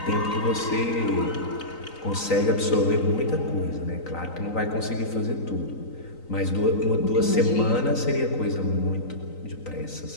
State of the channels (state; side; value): late; right; 3.9 ms